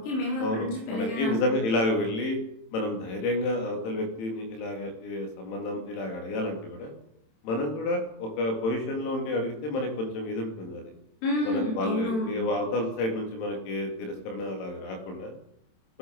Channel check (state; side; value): late; right; 27 ms